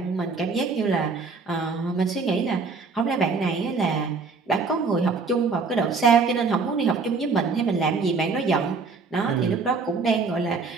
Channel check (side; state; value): left; quieter; 4.5 dB